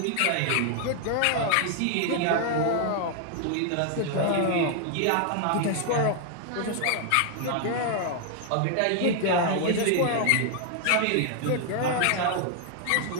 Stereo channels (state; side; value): different; both; correlation 0.00